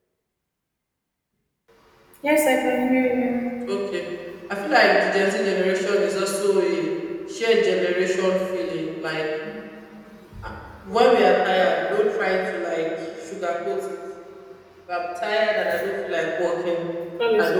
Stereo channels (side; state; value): both; identical; correlation 1.00